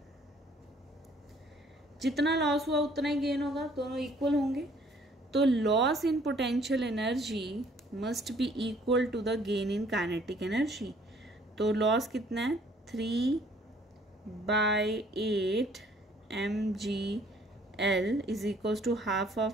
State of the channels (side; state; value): both; normal; correlation 0.60